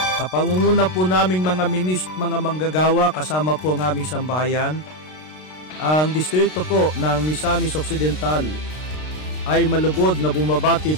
Kapangunguna po naming mga mga manggagawa kasama po ang aming sambahayan, ang distrito po ng Misamis Occidental ay malugod na bumabati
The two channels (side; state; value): right; late; 33 ms